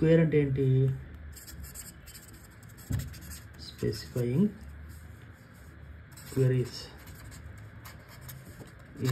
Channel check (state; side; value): identical; both; correlation 1.00